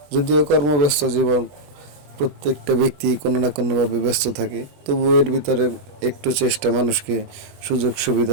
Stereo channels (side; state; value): left; late; 20 ms